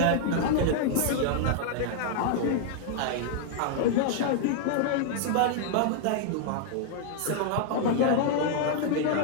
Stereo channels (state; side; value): different; both; correlation 0.00